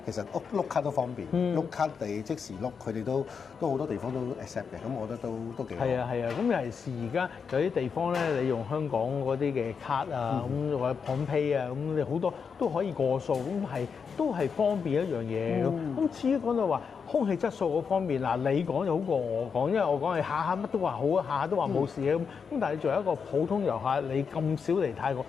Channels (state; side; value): quieter; right; 6.1 dB